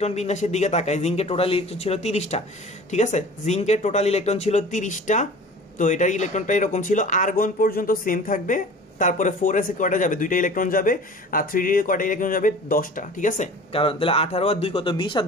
বিন্যাসের দিকে তাকাই, জিঙ্কের টোটাল ইলেকট্রন ছিল 30টা, ঠিক আছে? জিঙ্কের টোটাল ইলেকট্রন ছিল 30টা। তো এটার ইলেকট্রনটা এরকম ছিল, আর্গন পর্যন্ত সেম থাকবে, তারপরে 4s এ কয়টা যাবে, 2টা ইলেকট্রন যাবে, আর 3d এ কয়টা ইলেকট্রন যাবে, 10টা, ঠিক আছে? কারণ তাহলে 18 আর 2 কত, 20, আর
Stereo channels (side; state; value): both; normal; correlation 0.42